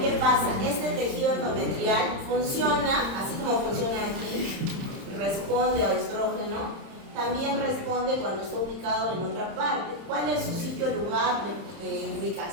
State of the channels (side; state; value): left; late; 30 ms